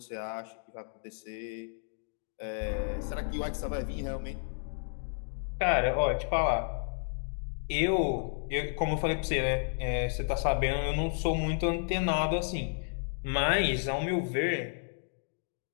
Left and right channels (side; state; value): right; silent; digital silence